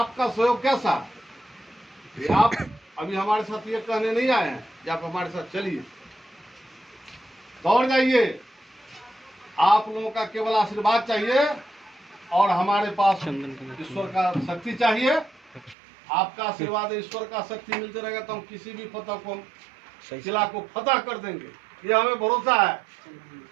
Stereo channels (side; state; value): left; drops out; at 15.8 s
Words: सहयोग कैसा? ये आप अभी हमारे साथ ये कहने नहीं आए हैं कि आप हमारे साथ चलिए, दौड़ जाइए। आप लोगों का केवल आशीर्वाद चाहिए और हमारे पास ईश्वर का शक्ति चाहिए। आपका आशीर्वाद, ईश्वर का शक्ति मिलते रहेगा तो हम किसी भी फतह को, किला को फतह कर देंगे, ये हमें भरोसा